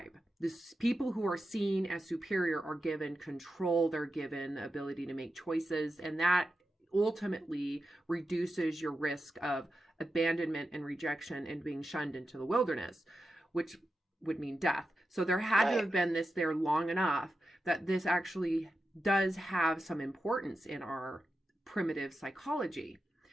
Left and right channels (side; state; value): both; normal; correlation 0.90